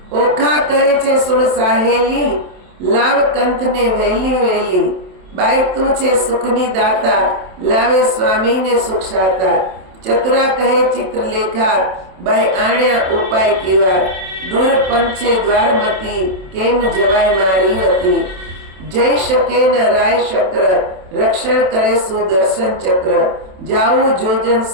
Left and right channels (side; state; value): left; late; 27 ms